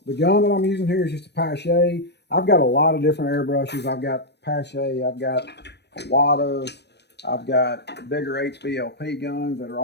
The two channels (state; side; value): late; right; 0.49 ms